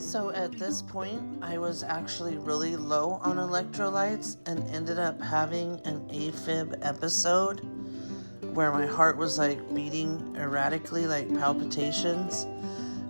at this point, I was actually really low on electrolytes and ended up having an AFib episode, where my heart was beating erratically, like palpitations,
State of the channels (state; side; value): inverted; both; correlation -1.00